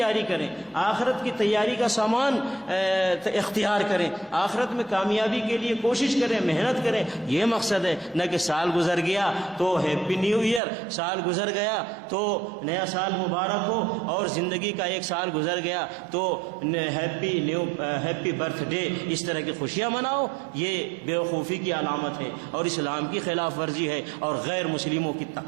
کریں، آخرت کی تیاری کا سامان اختیار کریں، آخرت میں کامیابی کے لیے کوشش کریں، محنت کریں. یہ مقصد ہے، نہ کہ سال گزر گیا تو ہیپی نیو ایئر، سال گزر گیا تو نیا سال مبارک ہو، اور زندگی کا ایک سال گزر گیا تو ہیپی برتھ ڈے، اس طرح کی خوشیاں مناؤ. یہ بیوقوفی کی علامت ہے اور اسلام کی خلاف ورزی ہے اور غیر مسلموں کی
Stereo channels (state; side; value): drops out; left; at 10.6 s